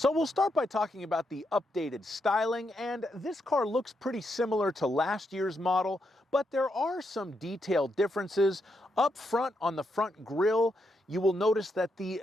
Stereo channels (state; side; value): normal; both; correlation 0.81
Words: we'll start by talking about the updated styling, and this car looks pretty similar to last year's model, but there are some detailed differences. Up front on the front grille, you will notice that the